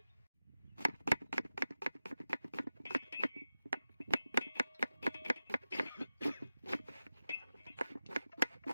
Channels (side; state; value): both; inverted; correlation -0.93